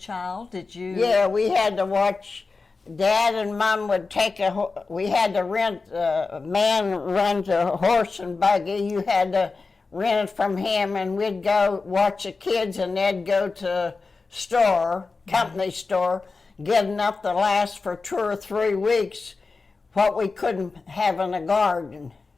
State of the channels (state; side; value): quieter; right; 4.1 dB